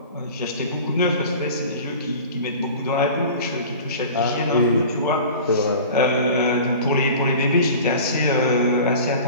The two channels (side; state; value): both; inverted; correlation -0.39